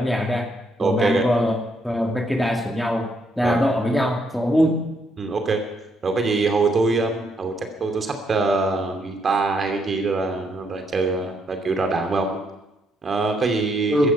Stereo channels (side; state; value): both; normal; correlation 0.74